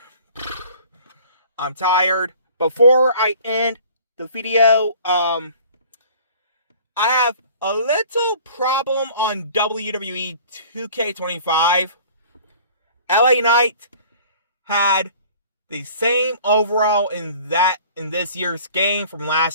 I'm tired. Before I end the video, I have a little problem on WWE 2K25. LA Knight had the same overall in this year's game from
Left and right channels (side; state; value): both; inverted; correlation -0.49